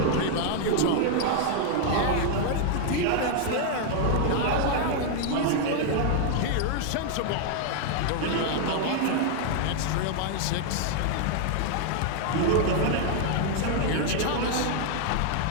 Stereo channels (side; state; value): both; different; correlation 0.00